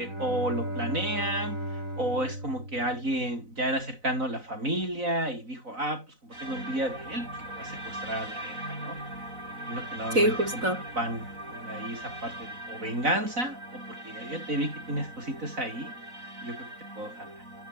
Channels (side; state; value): left; late; 4.0 ms